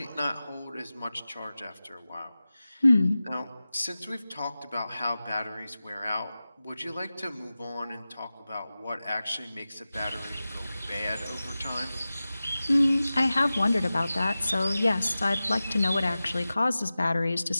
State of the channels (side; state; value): both; inverted; correlation -0.96